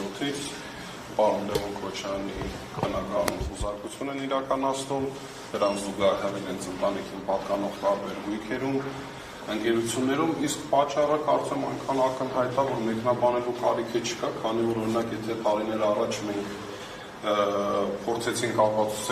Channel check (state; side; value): identical; both; correlation 1.00